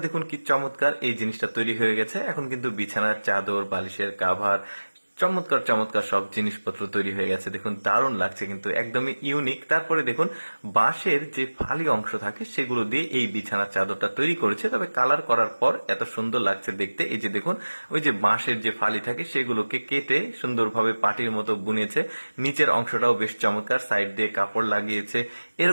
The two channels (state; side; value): inverted; both; correlation -1.00